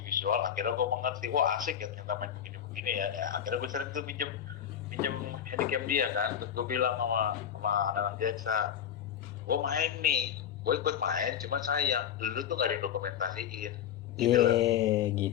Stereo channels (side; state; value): right; quieter; 9.2 dB